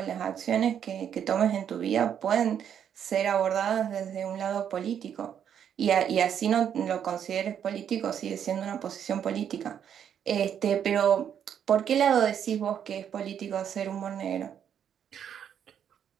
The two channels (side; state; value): left; quieter; 8.8 dB